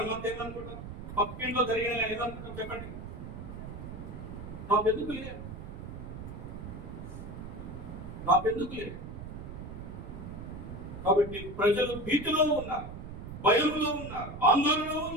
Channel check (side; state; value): right; noise; rumble, 9 dB below the sound